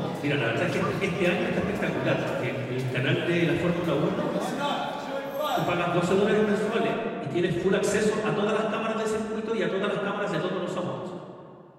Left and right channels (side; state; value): both; identical; correlation 1.00